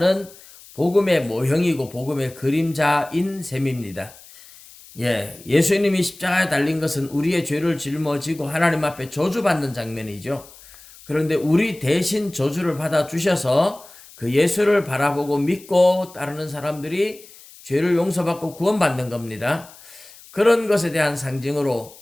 복음의 모형이고 복음의 그림자인 셈입니다. 예수님이 십자가에 달린 것은 우리의 죄를 짊어지고 하나님 앞에 저주받는 장면이죠. 그런데 우리 대신 저주를 받아 주셔서 그 예수를 바라보고 믿고 따르는 사람들이 죄를 용서받고 구원받는 겁니다. 그런 것에 대한 상징으로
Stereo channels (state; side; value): noise; left; hiss, 21 dB below the sound